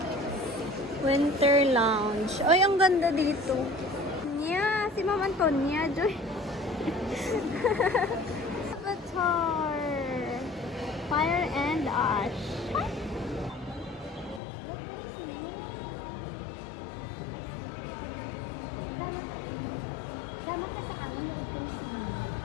Winter Lounge. Ay, ang ganda dito. Nya, si Ma'am Antonia, Joy. Avatar. Fire and Ash.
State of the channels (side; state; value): right; drops out; at 14.4 s